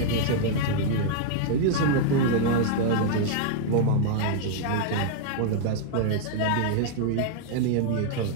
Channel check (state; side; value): different; both; correlation -0.01